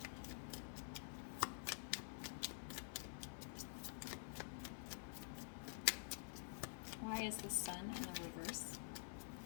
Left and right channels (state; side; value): silent; right; digital silence